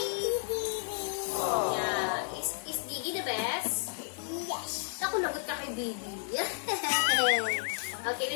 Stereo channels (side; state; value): right; silent; 56 dB below the other